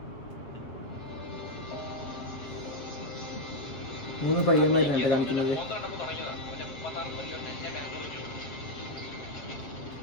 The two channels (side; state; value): right; late; 7.7 ms